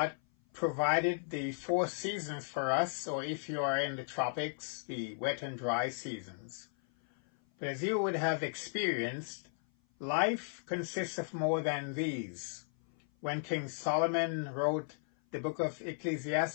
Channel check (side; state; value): right; silent; 54 dB below the other